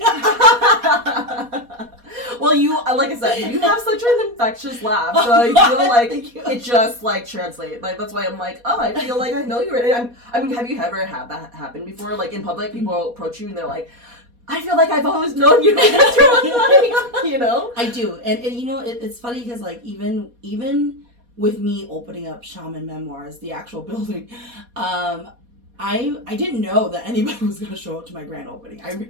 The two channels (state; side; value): late; left; 4.2 ms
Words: Well, like I said, you have such an infectious laugh, so I feel like it just like translates. Like, that's why I'm like, oh, I feel like I know you already. I mean, have you ever had that happen before? Like, in public, people approach you and they're like, I feel like I've always known you. I do, and it's funny because, like, even with me opening up Shaman Memoirs, the actual building, I didn't know that anybody was going to show up to my grand opening.